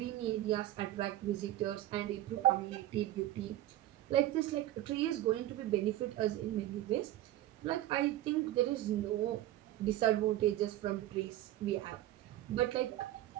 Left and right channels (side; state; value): left; quieter; 14.3 dB